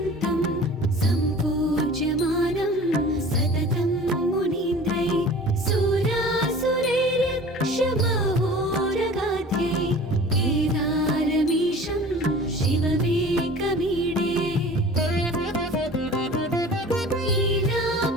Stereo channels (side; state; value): left; noise; hum, 25 dB below the sound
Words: सम्पूज्यमानं सततं मुनीन्द्रै सुरासुरैरक्षमहोरगाध्ये केदारमीशं शिवमेकमीडे।